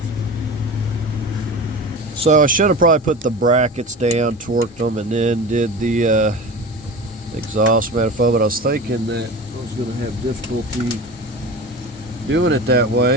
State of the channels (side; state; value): both; normal; correlation 0.31